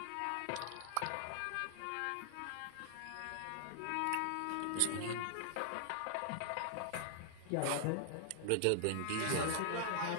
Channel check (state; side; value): different; both; correlation -0.01